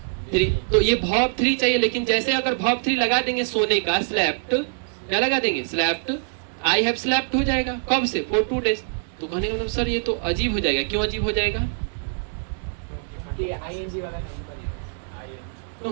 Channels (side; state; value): left; silent; 63 dB below the other